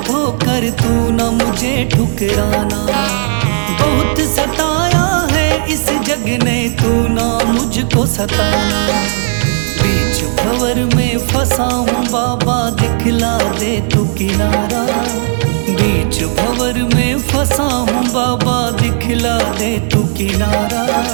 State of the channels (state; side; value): silent; left; digital silence